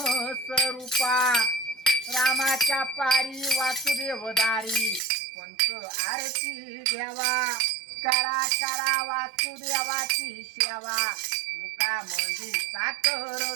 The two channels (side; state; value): left; drops out; at 5.0 s